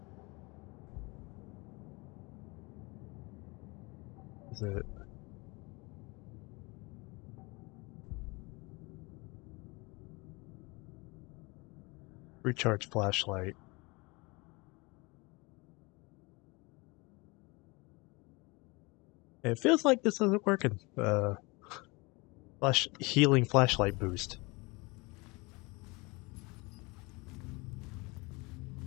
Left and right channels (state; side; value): quieter; right; 26.4 dB